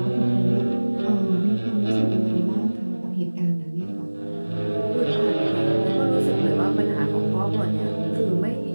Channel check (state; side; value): inverted; both; correlation -1.00